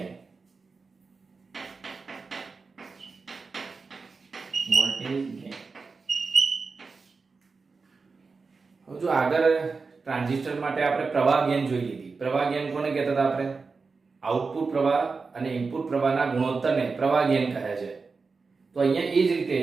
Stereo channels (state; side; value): quieter; left; 4.5 dB